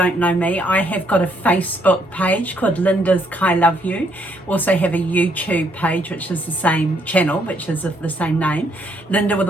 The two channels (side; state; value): both; normal; correlation 0.70